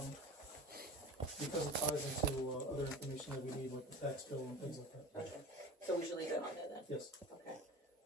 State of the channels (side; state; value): both; normal; correlation 0.35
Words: because it ties into other information that we need, like the tax bill and things like that. Okay, so we should leave it on there then? Yes. Okay.